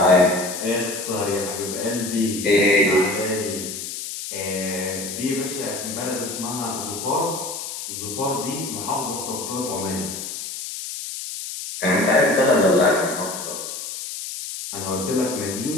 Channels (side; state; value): left; noise; hiss, 7 dB below the sound